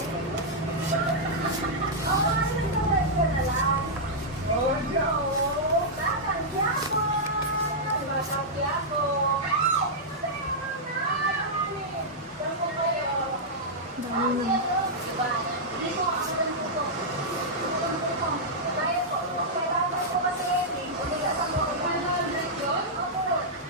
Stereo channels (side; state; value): both; normal; correlation -0.08